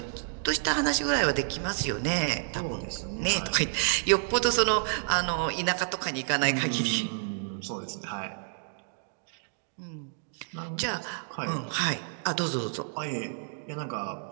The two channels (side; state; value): left; silent; digital silence